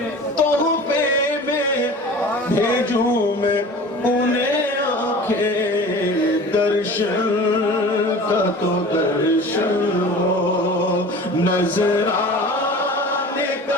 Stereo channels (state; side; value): normal; both; correlation 0.39